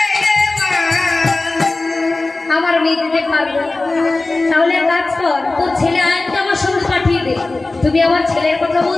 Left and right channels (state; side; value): quieter; right; 3.2 dB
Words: মা। আমার মেয়ে যেতে পারবে না। তাহলে এক কাজ কর, তোর ছেলে আয়াতকে আমার সঙ্গে পাঠিয়ে দে। তুমি আমার ছেলের কথা